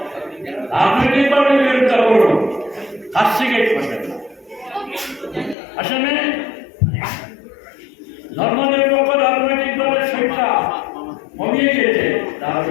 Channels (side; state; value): right; drops out; at 5.6 s